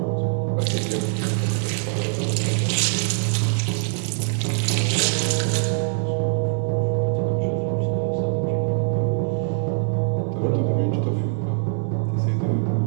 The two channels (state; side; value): silent; left; digital silence